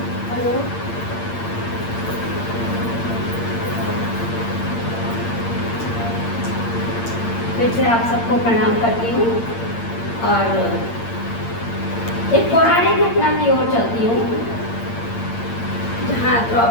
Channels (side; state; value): right; late; 8.7 ms